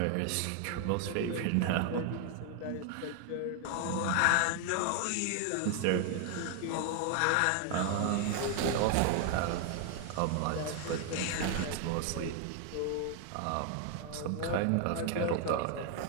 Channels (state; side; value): different; both; correlation 0.00